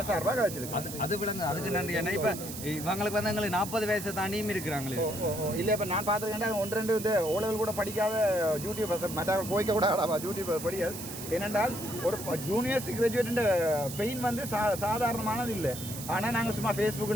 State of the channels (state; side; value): noise; right; hiss, 9 dB below the sound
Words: சார்பாக வச்சிருக்கேன். அது விளங்க அதுக்கு நன்றி. ஏன்னா இப்போ இவங்களுக்கு வந்து எங்களுக்கு 40 வயசு தாண்டியும் இருக்கிறாங்களே. இல்லை இப்போ நான் பார்த்துருக்கேன் 1-2 இந்த ஓலவில் கூட படிக்காத யூடியூபர் மற்றவர்கள் கோய்க்க கூட ஆடாவா யூடியூபர் படியாது. ஏனென்றால் ஒரு ஜூனியர்ஸ் கிராஜுவேட் பெயின் வந்து சாதாரணமானது இல்லை. ஆனால் நாங்கள் சும்மா